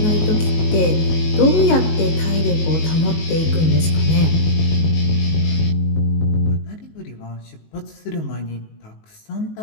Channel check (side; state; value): right; late; 19 ms